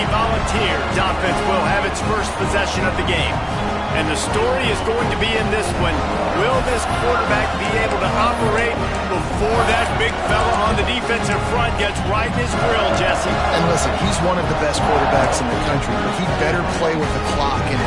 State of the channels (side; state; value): both; identical; correlation 1.00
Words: Volunteers offense will have its first possession of the game. And the story is going to be in this one. Will this quarterback be able to operate before that big fella on the defensive front gets right in his grill, Jesse? And listen, he's one of the best quarterbacks in the country, but he better play with the clock in